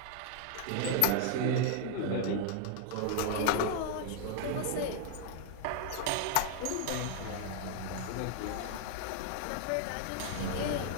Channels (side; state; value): both; different; correlation 0.00